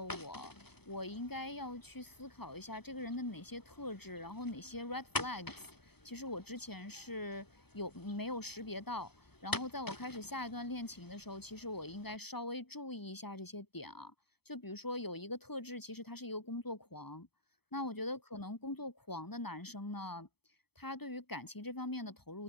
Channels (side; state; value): right; late; 0.97 ms